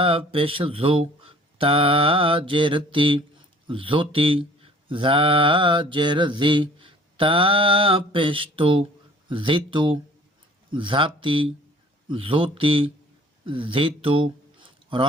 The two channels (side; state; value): both; normal; correlation 0.52